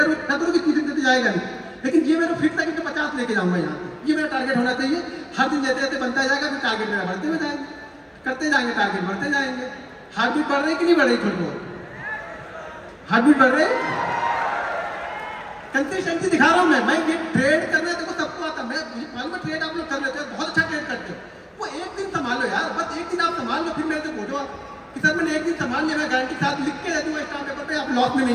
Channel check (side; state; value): both; identical; correlation 1.00